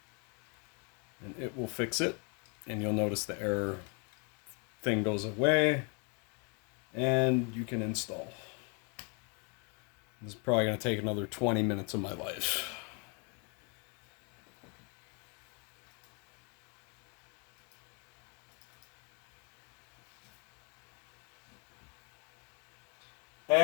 And it will fix it. And you'll notice the error thing goes away. And you can install. This is probably going to take another 20 minutes of my life.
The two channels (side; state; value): right; quieter; 34.8 dB